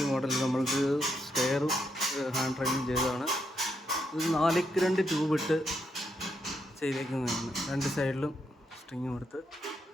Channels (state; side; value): normal; both; correlation 0.79